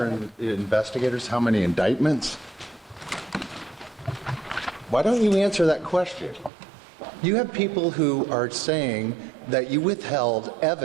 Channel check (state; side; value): drops out; left; at 6.5 s